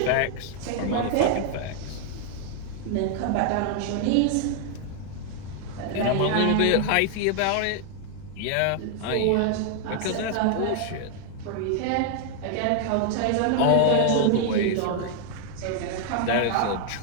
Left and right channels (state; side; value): different; both; correlation 0.00